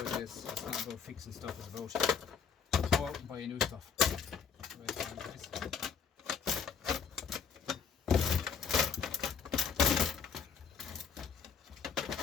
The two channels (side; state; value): right; quieter; 6.6 dB